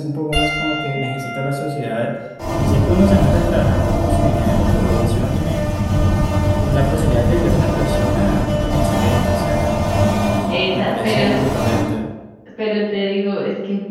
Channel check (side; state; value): both; identical; correlation 1.00